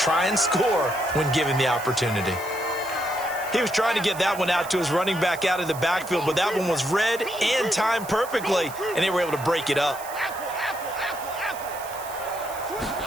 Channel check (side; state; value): right; noise; hiss, 15 dB below the sound